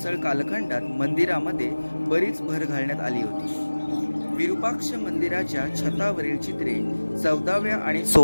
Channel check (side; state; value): both; inverted; correlation -1.00